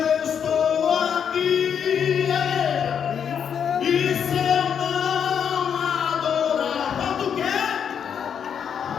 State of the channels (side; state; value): right; quieter; 7.7 dB